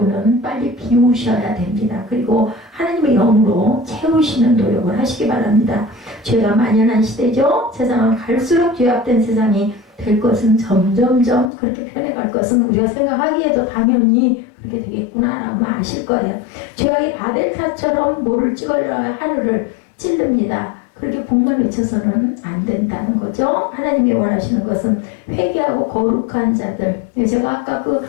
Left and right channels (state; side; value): drops out; right; at 11.5 s